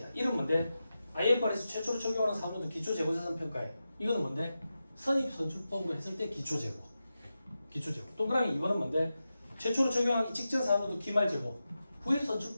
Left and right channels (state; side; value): inverted; both; correlation -0.92